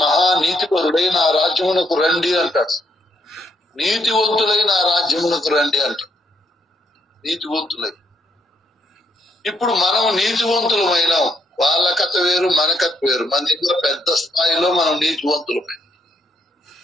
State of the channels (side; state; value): both; normal; correlation 0.73